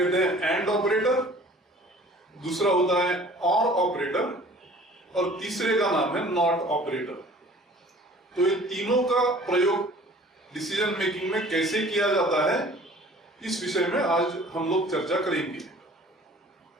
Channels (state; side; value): normal; both; correlation 0.49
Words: हैं एंड ऑपरेटर, दूसरा होता है और ऑपरेटर और तीसरे का नाम है नॉट ऑपरेटर। तो ये तीनों का प्रयोग डिसीजन मेकिंग में कैसे किया जाता है, इस विषय में आज हम लोग चर्चा करेंगे।